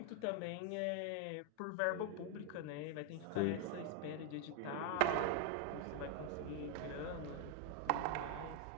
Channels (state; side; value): different; both; correlation 0.00